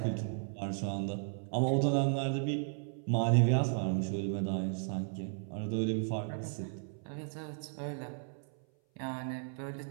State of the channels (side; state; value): left; silent; 55 dB below the other